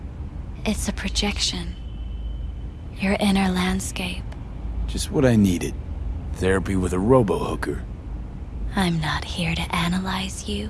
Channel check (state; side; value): identical; both; correlation 1.00